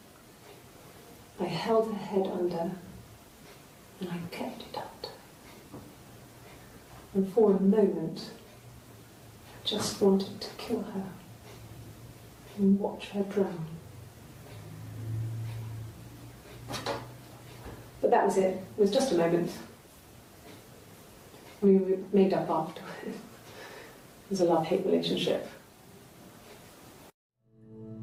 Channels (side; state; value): both; identical; correlation 1.00